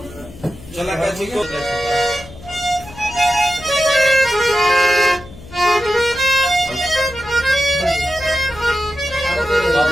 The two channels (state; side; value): noise; left; hum, 17 dB below the sound